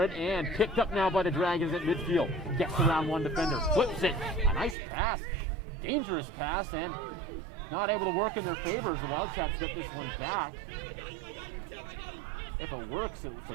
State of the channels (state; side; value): drops out; left; at 4.8 s